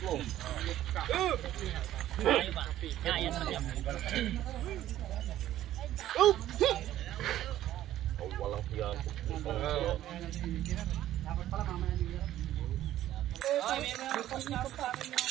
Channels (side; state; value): left; quieter; 13.1 dB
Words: mo. Walang tiyan.